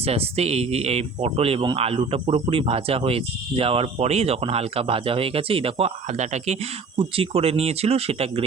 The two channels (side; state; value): left; quieter; 4.4 dB